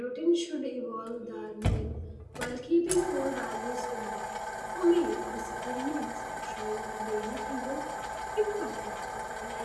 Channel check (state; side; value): identical; both; correlation 1.00